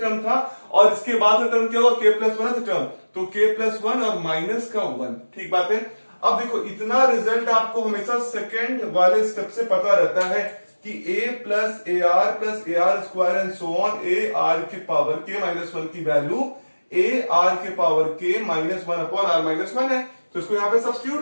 टर्म था और इसके बाद का टर्म क्या होगा, k प्लस 1th टर्म। तो k प्लस 1 और माइनस का 1। ठीक बात है, अब देखो इतना रिजल्ट आपको हमेशा सेकंड वाले स्टेप से पता रहता है कि a plus a r square and so on a r के पावर के माइनस वन की वैल्यू ए आर के power k minus one upon r minus one है। तो इसको यहां पे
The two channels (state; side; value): inverted; both; correlation -1.00